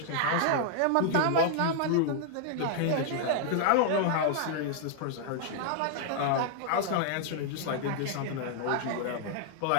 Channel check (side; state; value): both; different; correlation -0.01